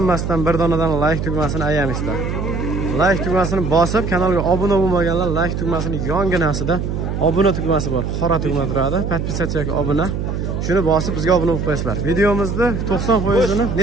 bir donadan like tugmasini ayamizlar. Like tugmasini bosib, kanalga obuna bo'lmaganlar like tugmasini yonginasida obuna tugmasi bor. Qora tugma turadi. Podpisatsiyaga obuna. Shuni bosib bizga obuna bo'lib qo'yasizlar. Videomizda 90%ni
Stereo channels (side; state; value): right; noise; hum, 3 dB below the sound